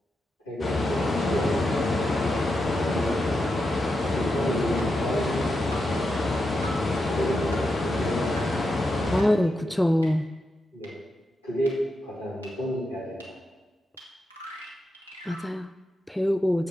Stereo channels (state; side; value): normal; both; correlation 0.87